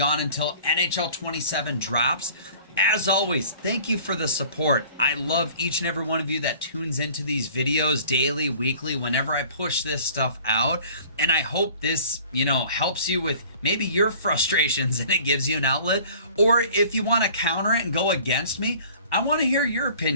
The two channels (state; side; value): inverted; both; correlation -0.49